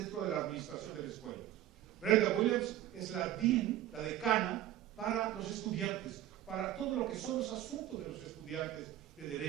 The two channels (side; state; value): left; quieter; 13.1 dB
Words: de la administración de la escuela. Brenda Williams es la dean, la decana, para los estudiantes, para todo lo que son los asuntos de los estudiantes de